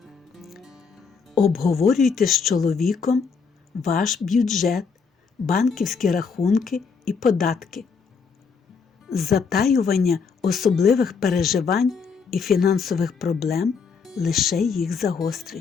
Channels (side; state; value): right; quieter; 5.5 dB